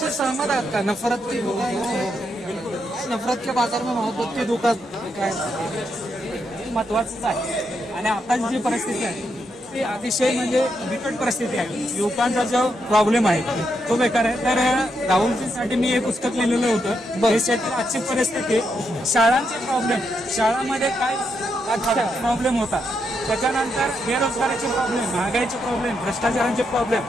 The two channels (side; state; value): both; normal; correlation 0.81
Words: सहमत आहात का? नफरत की नफरत के बाजार में मोहब्बत की दुकान काय महत्वाचंच आहे. आणि आताची जी परिस्थिती आहे ती अतिशय म्हणजे बिकट परिस्थिती आहे. युवकांचा जो प्रॉब्लेम आहे तो बेकार आहे. तर राहुलजींसाठी मी एक पुस्तक लिहिलेलं होतं, देशातील आजची परिस्थिती, शाळांचे प्रॉब्लेम, शाळांमध्ये काय प्रॉब्लेम होता, त्याच्यानंतर बेरोजगारीचे प्रॉब्लेम, महागाईचे प्रॉब्लेम, भ्रष्टाचारांचे प्रॉब्लेम.